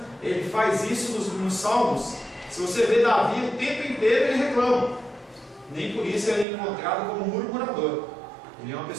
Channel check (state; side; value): drops out; left; at 6.5 s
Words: ele faz isso nos salmos. Se você vê Davi, o tempo inteiro ele reclama. Nem por isso ele é encontrado como murmurador. Ele é uma